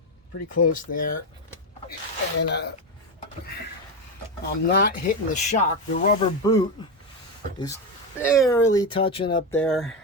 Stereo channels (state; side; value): normal; both; correlation 0.12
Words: pretty close there, and I'm not hitting the shock. The rubber boot is barely touching up there,